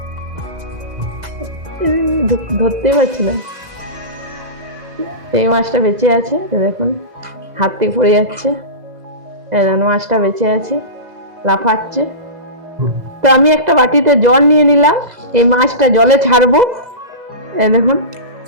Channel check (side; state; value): left; late; 2.0 ms